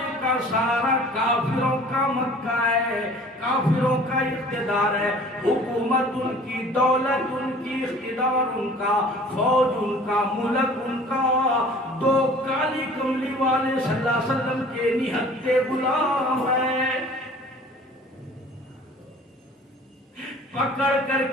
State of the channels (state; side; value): normal; both; correlation 0.48